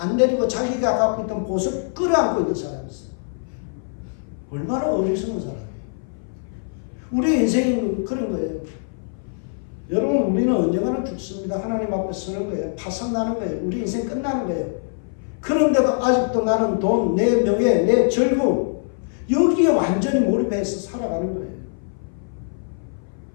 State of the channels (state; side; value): silent; right; 58 dB below the other